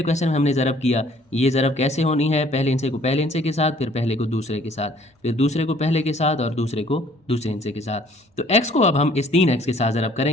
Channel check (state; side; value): normal; both; correlation 0.58